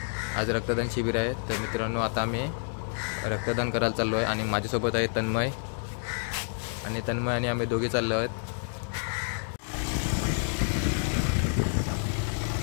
आज रक्तदान शिबिर आहे। तर मित्रांनो, आता आम्ही रक्तदान करायला चाललो आहे आणि माझ्यासोबत आहे तन्मय आणि आम्ही दोघे चाललो आहोत।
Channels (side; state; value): right; silent; digital silence